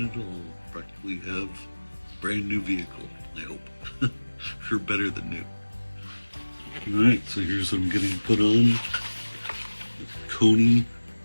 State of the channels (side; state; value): both; inverted; correlation -1.00